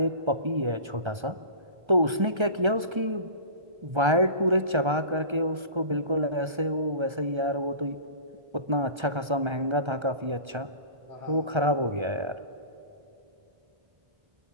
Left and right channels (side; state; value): left; late; 1.3 ms